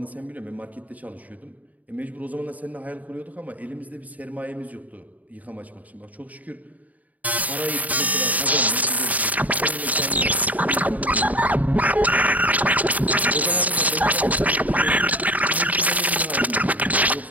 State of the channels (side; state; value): left; late; 0.074 ms